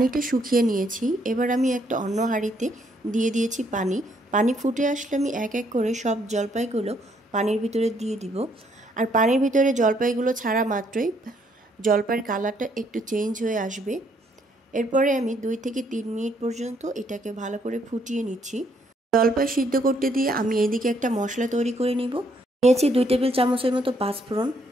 শুকিয়ে নিয়েছি। এবার আমি একটা অন্য হাঁড়িতে দিয়ে দিয়েছি পানি ফুটে আসলে আমি এক এক করে সব জলপাইগুলো পানির ভিতরে দিয়ে দিব। আর পানির ভিতরে জলপাইগুলো ছাড়া মাত্রই জলপাইয়ের কালারটা একটু চেঞ্জ হয়ে আসবে। এরপরে আমি 2 থেকে 3 মিনিট পর্যন্ত এটাকে ভালো করে ফুটিয়ে নিচ্ছি। জলপাই সিদ্ধ করতে দিয়ে আমি এদিকে একটা মশলা তৈরি করে নিব। নিয়েছি 2 টেবিল চামচের মতো পাঁচফোড়ন,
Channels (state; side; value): normal; both; correlation 0.70